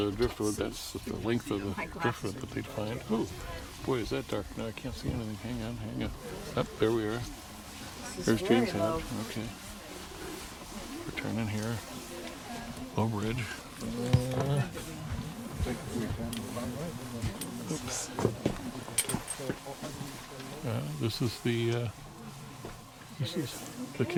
driftwood, that's the length of the driftwood that they'd find. Oh, boy, is that dark now. I can't see anything. Hang on. Up, there we are. There's James Head. Okay. We're turning here. Low bridge. Oops. This is the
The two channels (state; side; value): identical; both; correlation 1.00